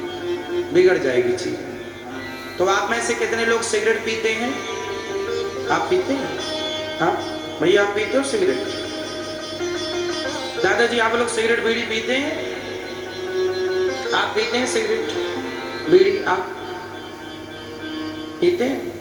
बिगड़ जाएगी चीज। तो आप में से कितने लोग सिगरेट पीते हैं? आप पीते हैं? हाँ भैया, आप पीते हो सिगरेट? दादाजी, आप लोग सिगरेट बीड़ी पीते हैं? आप पीते हैं सिगरेट बीड़ी? आप पीते हैं?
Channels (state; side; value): identical; both; correlation 1.00